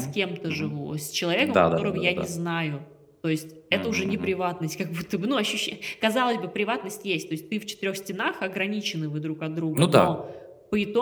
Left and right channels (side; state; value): both; identical; correlation 1.00